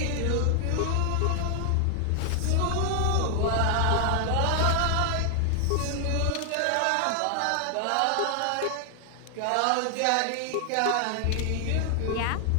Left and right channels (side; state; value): both; different; correlation 0.00